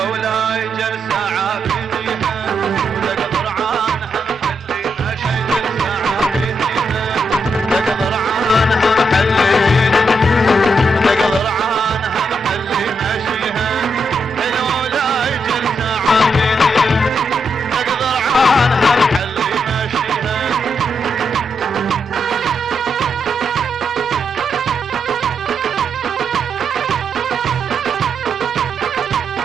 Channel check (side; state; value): both; normal; correlation 0.81